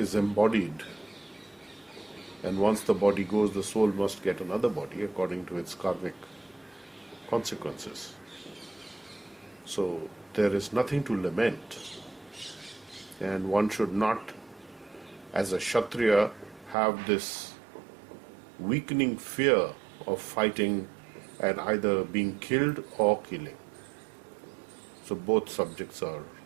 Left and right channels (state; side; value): drops out; left; at 16.8 s